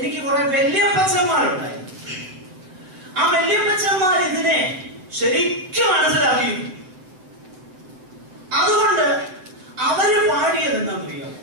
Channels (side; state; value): left; late; 7.9 ms